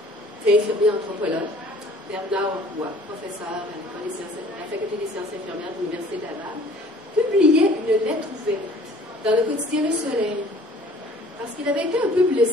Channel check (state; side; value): normal; both; correlation 0.52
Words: infirmier anthropologue, Bernard Roy, professeur à la Faculté des sciences infirmières de l'Université de Laval, publiait une lettre ouverte dans le quotidien Le Soleil, parce qu'il avait été un peu